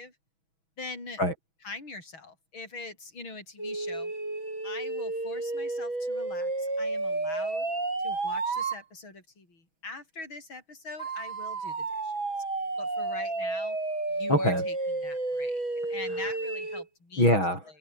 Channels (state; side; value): late; right; 6.2 ms